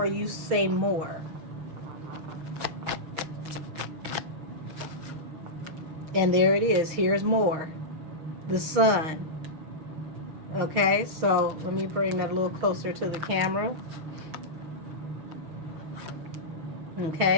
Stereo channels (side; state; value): left; late; 6.4 ms